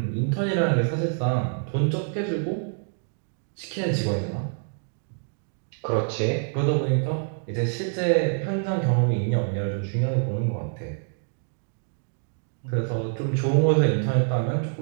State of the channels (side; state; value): left; silent; 61 dB below the other